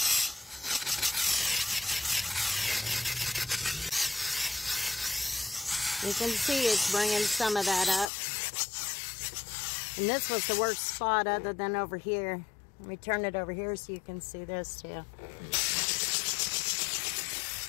You can see it's bringing some of that up. And this was the worst spot other than over here. Let me turn it over here so you can see this too.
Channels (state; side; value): drops out; right; at 8.1 s